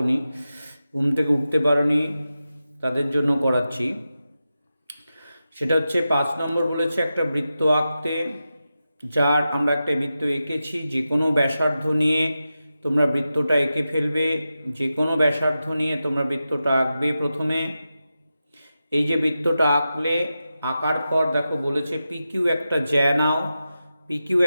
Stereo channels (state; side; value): inverted; both; correlation -0.91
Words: ঘুম থেকে উঠতে পারোনি, তাদের জন্য করাচ্ছি। সেটা হচ্ছে 5 নম্বর বলেছে একটা বৃত্ত আঁকতে, যার আমরা একটা বৃত্ত এঁকেছি। যে কোনো ব্যাসার্ধ নিয়ে তোমরা বৃত্তটা এঁকে ফেলবে, যে কোনো ব্যাসার্ধ নিয়ে তোমরা বৃত্তটা আঁকবে। প্রথমে এই যে বৃত্তটা আঁকলে, আঁকার পর দেখো বলেছে পিকিউ একটা জ্যা নাও। পিকিউ